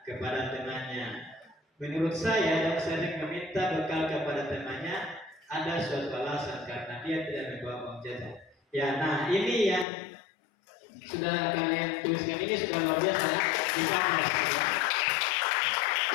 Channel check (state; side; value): drops out; right; at 9.9 s